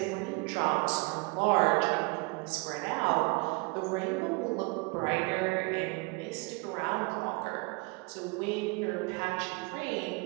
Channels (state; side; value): quieter; left; 28.5 dB